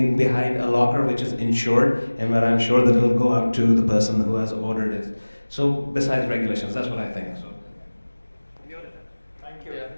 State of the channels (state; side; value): inverted; both; correlation -1.00